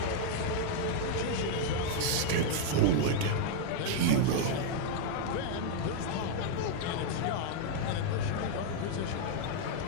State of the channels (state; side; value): different; both; correlation 0.00